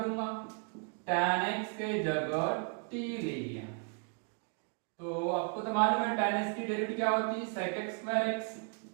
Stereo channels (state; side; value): quieter; left; 37.0 dB